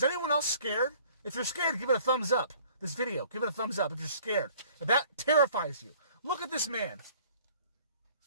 anyone else scared? If you're scared, give it a thumbs up. This video, give it a thumbs up if you're scared. If that terrifies you. Look at this man.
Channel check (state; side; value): inverted; both; correlation -0.54